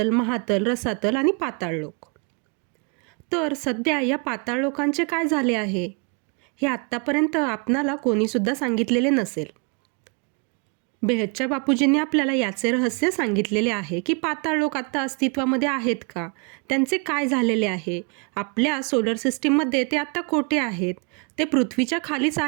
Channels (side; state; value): left; quieter; 34.7 dB